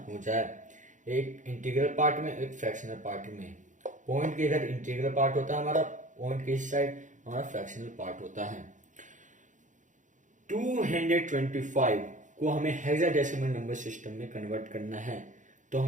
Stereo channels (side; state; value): left; late; 0.36 ms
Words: हो जाए, एक इंटीग्रल पार्ट में एक फ्रैक्शनल पार्ट में। पॉइंट के इधर इंटीग्रल पार्ट होता है हमारा, पॉइंट के इस साइड हमारा फ्रैक्शनल पार्ट होता है। 225 को हमें हेक्साडेसिमल नंबर सिस्टम में कन्वर्ट करना है तो